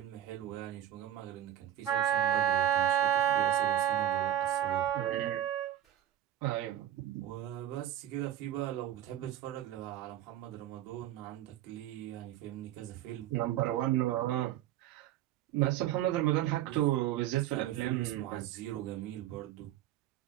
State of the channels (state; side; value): quieter; left; 11.9 dB